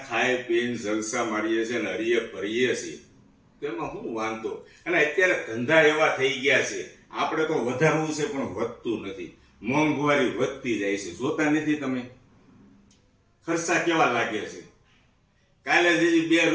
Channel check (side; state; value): both; identical; correlation 1.00